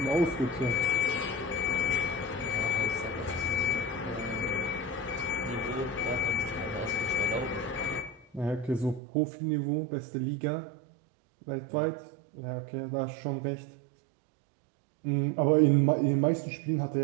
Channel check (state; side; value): drops out; left; at 9.0 s